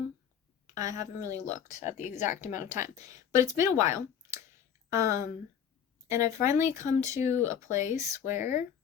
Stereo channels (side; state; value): right; quieter; 8.4 dB